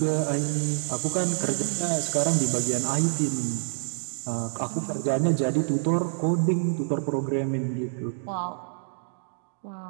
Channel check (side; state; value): left; silent; digital silence